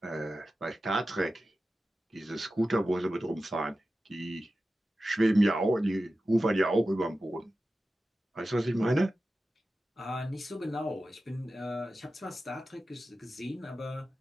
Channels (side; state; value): both; normal; correlation 0.93